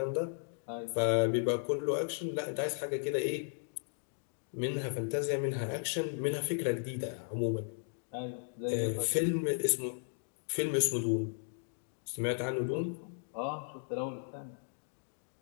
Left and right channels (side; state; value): right; silent; digital silence